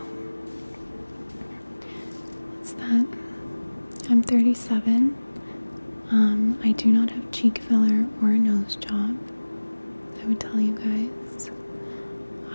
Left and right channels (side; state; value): both; inverted; correlation -1.00